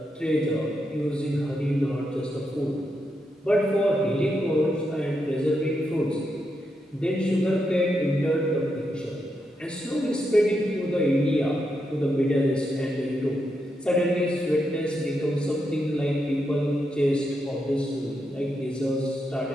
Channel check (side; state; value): both; normal; correlation 0.83